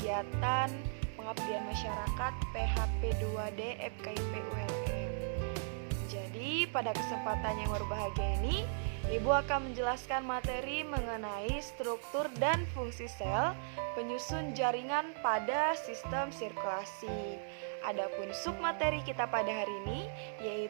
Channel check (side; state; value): left; silent; digital silence